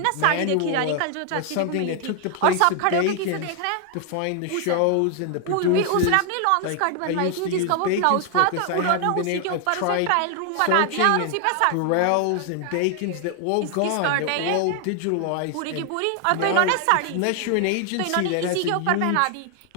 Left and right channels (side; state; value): both; different; correlation 0.00